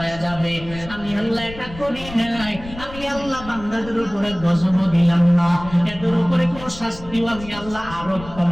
যাবে, আমি আল্লাহ এটা করি নাই। আমি আল্লাহ বান্দাদের উপরে গজব দিলাম না, এদের উপরে কোনো শাস্তিও আমি আল্লাহ আরোপ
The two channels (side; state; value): left; noise; rumble, 15 dB below the sound